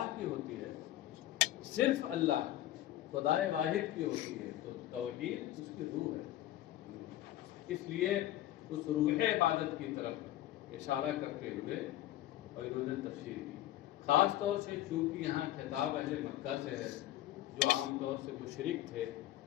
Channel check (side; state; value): right; quieter; 14.1 dB